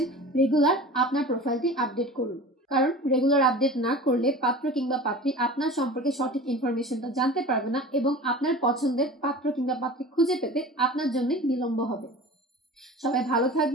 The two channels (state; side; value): normal; both; correlation 0.37